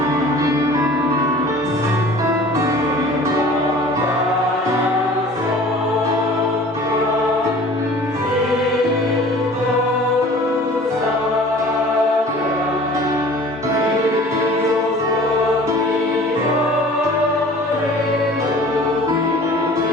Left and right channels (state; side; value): normal; both; correlation 0.46